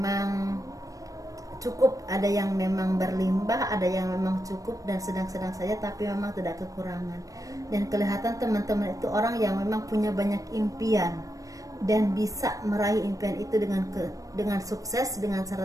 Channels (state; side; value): late; left; 0.16 ms